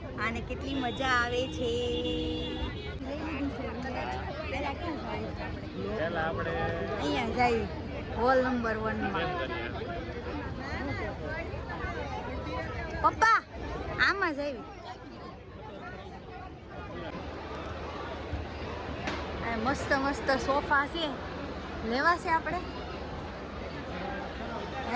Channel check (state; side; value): identical; both; correlation 1.00